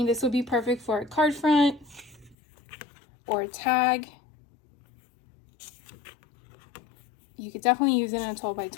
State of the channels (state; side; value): drops out; right; at 2.4 s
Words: this would be perfect for a card front or a tag. You could definitely use it in a